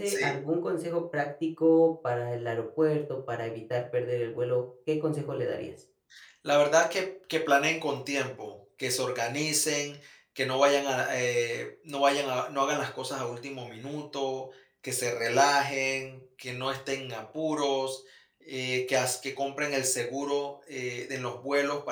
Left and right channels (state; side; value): identical; both; correlation 1.00